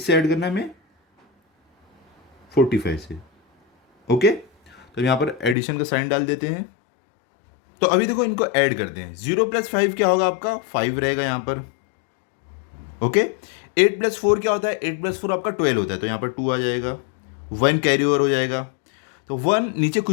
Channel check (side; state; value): right; drops out; at 5.6 s